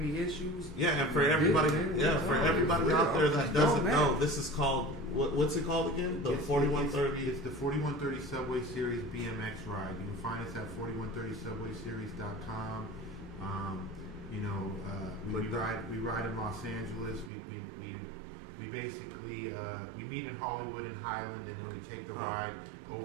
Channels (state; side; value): drops out; left; at 17.3 s